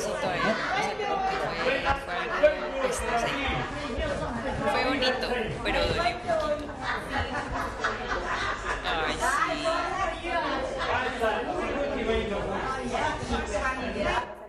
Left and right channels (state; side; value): identical; both; correlation 1.00